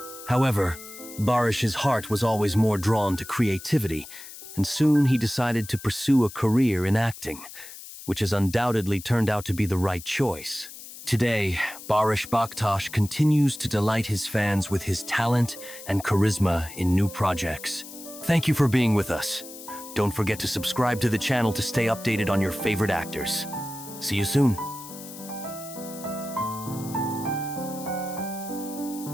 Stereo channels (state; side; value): noise; left; hiss, 14 dB below the sound